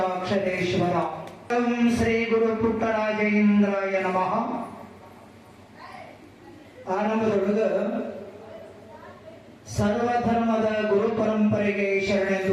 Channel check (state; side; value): identical; both; correlation 1.00